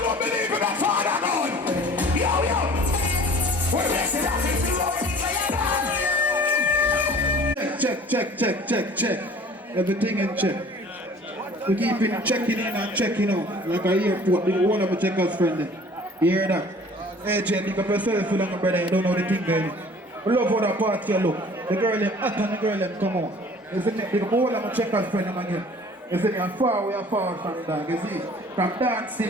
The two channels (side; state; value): both; normal; correlation 0.48